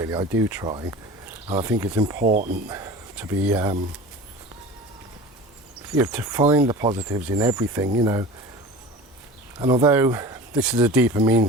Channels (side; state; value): both; normal; correlation 0.37